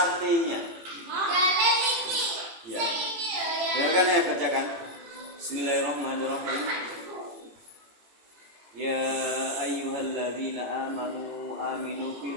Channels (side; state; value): left; late; 18 ms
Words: artinya. Ya. Dengarkan saya bacakan. Bismillahirrahmanirrahim. Ya ayyuhalladzina amanu aminu